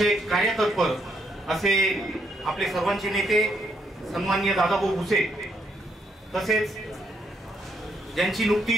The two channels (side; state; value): both; normal; correlation 0.74